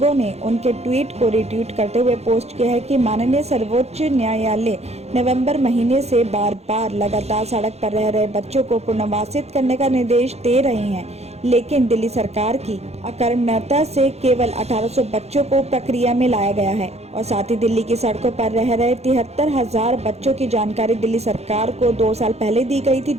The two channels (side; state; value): left; late; 0.31 ms